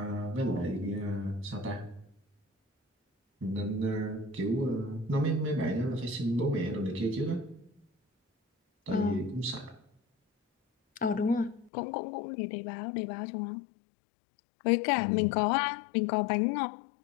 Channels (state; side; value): drops out; right; at 11.7 s